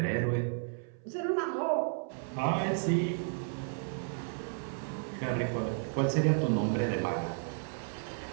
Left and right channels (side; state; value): left; silent; 56 dB below the other